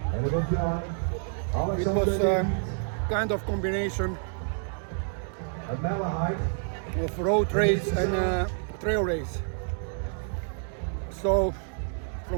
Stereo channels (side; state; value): left; silent; 59 dB below the other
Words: It was kind of combination of road race and trail race. So